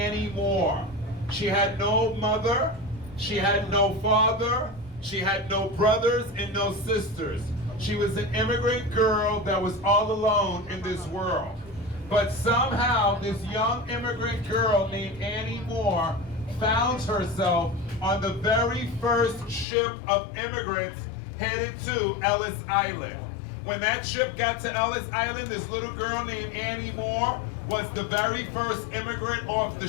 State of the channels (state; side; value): drops out; right; at 19.7 s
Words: Moore. She had no mother, she had no father, she had no brothers and no sisters. She was an immigrant girl that was all alone in this world. But somehow this young immigrant girl named Annie Moore found herself on the very first ship of immigrants headed to Ellis Island. When that ship got to Ellis Island, this little girl named Annie Moore was the very first immigrant off the